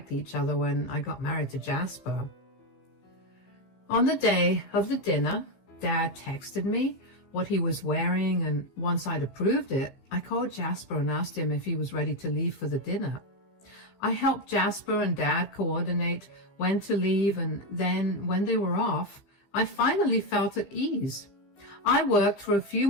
each other when I got married to Jasper. On the day of the dinner, Dad texted me what he was wearing, and once I'd approved it, I called Jasper and asked him if he was ready to leave for the dinner. I helped Jasper and Dad coordinate when to leave, and then when they were off, I finally felt at ease. I worked for a few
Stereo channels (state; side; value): late; right; 15 ms